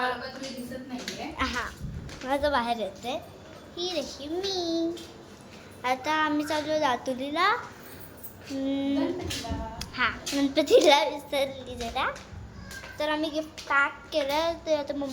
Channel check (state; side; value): identical; both; correlation 1.00